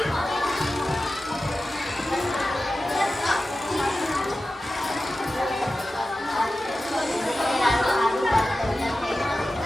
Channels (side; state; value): both; normal; correlation 0.94